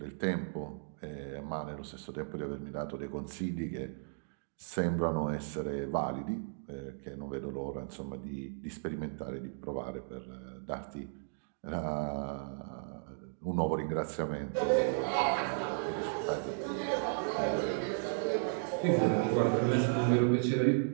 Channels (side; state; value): left; silent; digital silence